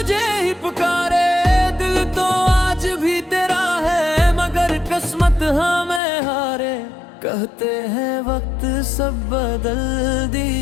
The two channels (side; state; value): right; drops out; at 6.0 s